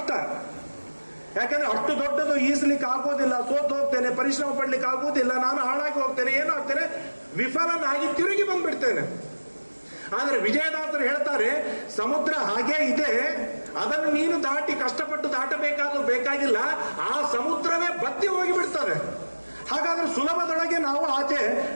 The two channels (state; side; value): inverted; both; correlation -1.00